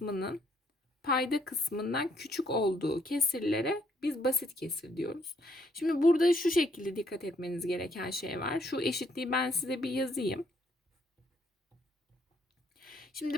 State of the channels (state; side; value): normal; both; correlation 0.70